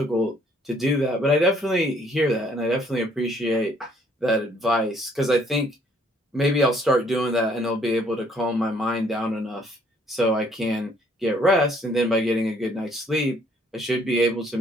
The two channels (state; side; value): normal; both; correlation 0.63